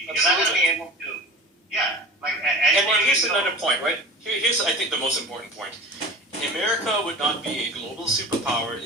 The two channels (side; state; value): both; normal; correlation 0.35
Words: not going to be able to. Yeah, and here's another point, right? Here's, I think, the most important point. America would not be a global superpower